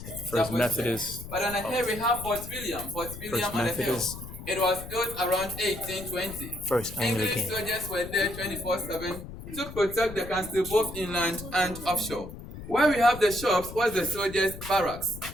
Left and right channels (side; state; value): left; noise; rumble, 12 dB below the sound